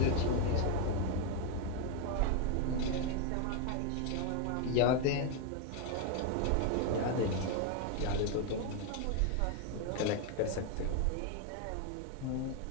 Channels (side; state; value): both; different; correlation 0.01